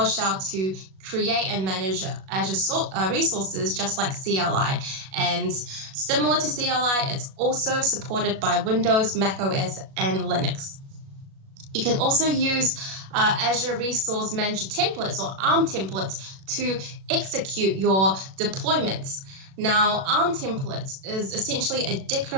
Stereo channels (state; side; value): late; left; 37 ms